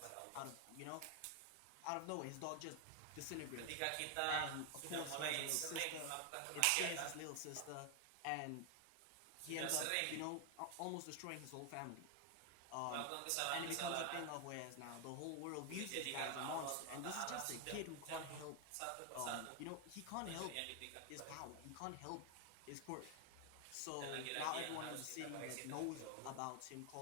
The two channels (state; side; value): different; both; correlation 0.00